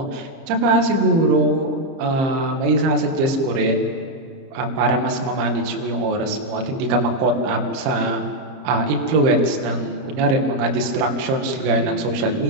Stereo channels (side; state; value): left; late; 30 ms